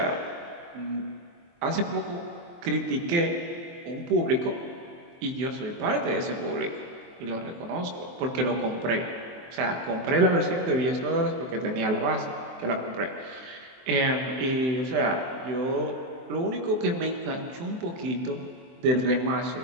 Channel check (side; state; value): left; late; 23 ms